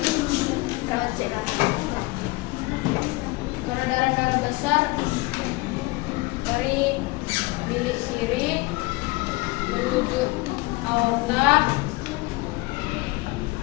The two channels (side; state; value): right; quieter; 22.9 dB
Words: perawat cek. Peredaran darah besar dari bilik kiri menuju aorta,